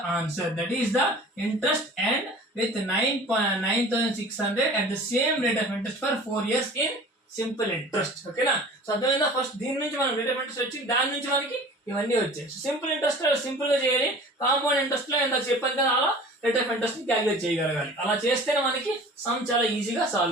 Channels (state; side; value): normal; both; correlation 0.43